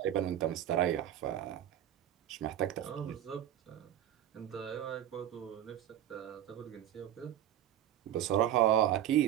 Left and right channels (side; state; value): left; quieter; 11.4 dB